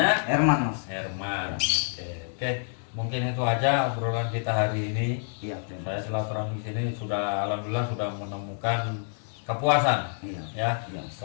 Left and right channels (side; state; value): right; silent; 60 dB below the other